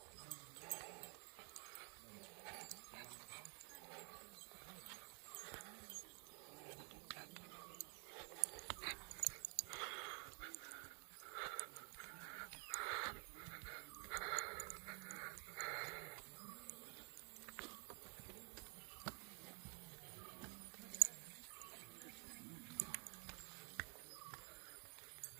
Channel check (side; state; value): left; quieter; 38.6 dB